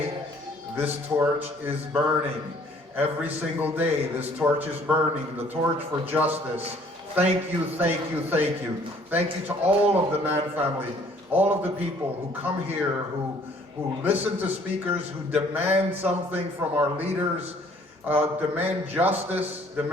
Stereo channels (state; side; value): normal; both; correlation 0.58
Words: this torch is burning. Every single day, this torch is burning, the torch for justice. Thank you, thank you, thank you. Thank you to all of the Nan family, all of the people who come here, who listen to speakers, who demand something from our leaders, demand justice,